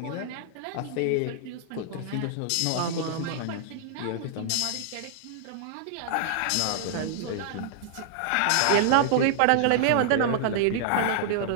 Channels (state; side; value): different; both; correlation -0.01